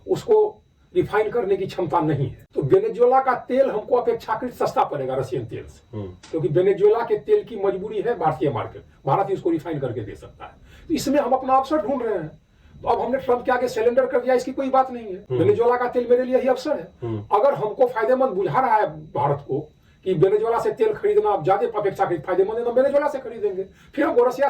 उसको रिफाइन करने की क्षमता नहीं है। तो वेनेजुएला का तेल हमको अपेक्षाकृत सस्ता पड़ेगा रशियन तेल से, क्योंकि वेनेजुएला के तेल की मजबूरी है भारतीय मार्केट, भारत ही उसको रिफाइन करके दे सकता है। तो इसमें हम अपना अवसर ढूंढ रहे हैं। तो अब हमने ट्रंप के आगे सरेंडर कर दिया, इसकी कोई बात नहीं है। वेनेजुएला का तेल मेरे लिए ही अवसर है। अगर हमको फायदेमंद बुझा रहा है भारत को कि वेनेजुएला से तेल खरीदना अब ज्यादा अपेक्षाकृत फायदेमंद है, तो वेनेजुएला से खरीदेंगे। फिर हमको रशिया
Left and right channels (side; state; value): both; identical; correlation 1.00